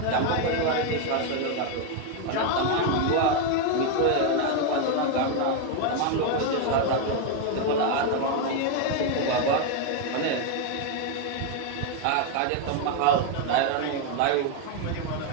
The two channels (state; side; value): different; both; correlation 0.01